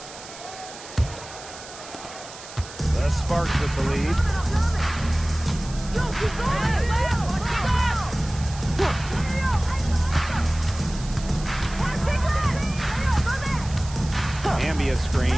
The Sparks with the lead. Hamby a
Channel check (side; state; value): right; noise; hiss, 15 dB below the sound